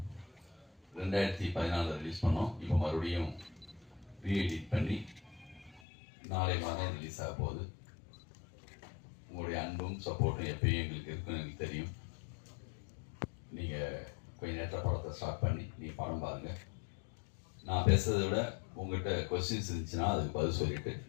2014 release பண்ணோம். இப்போ மறுபடியும் ரீஎடிட் பண்ணி நாளை மாதம் ரிலீஸ் ஆக போகுது. உங்களுடைய அன்பும் சப்போர்ட்டும் எப்பயும் எங்களுக்கு இருக்குன்னு எனக்கு தெரியும். நீங்கள் கொஞ்சம் நேரத்தில் படத்தை ஸ்டார்ட் பண்ணி நீங்கள் படம் பாருங்கள். நான் பேசுறதை விட உங்கள்கிட்ட கொஸ்டின்ஸ் இருந்துச்சுன்னா அதுக்கு பதில் சொல்லிட்டு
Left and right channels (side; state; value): right; drops out; at 5.8 s